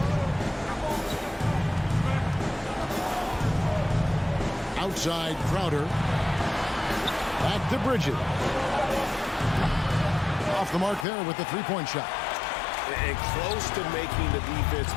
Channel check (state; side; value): drops out; right; at 11.1 s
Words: Outside Crowder. Back to Bridges. Off the mark there with the three-point shot. And close to making the defense